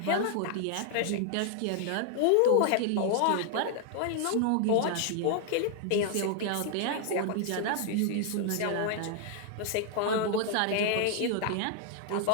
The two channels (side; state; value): both; different; correlation 0.00